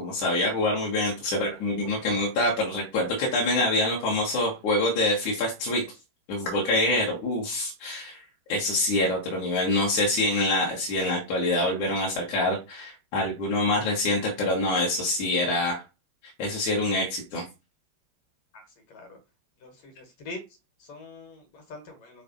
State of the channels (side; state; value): right; late; 9.7 ms